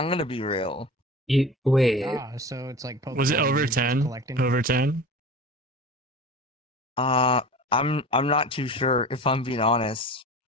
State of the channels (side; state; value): both; normal; correlation 0.35